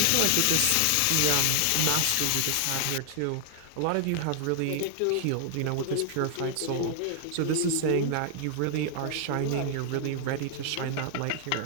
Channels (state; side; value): different; both; correlation 0.00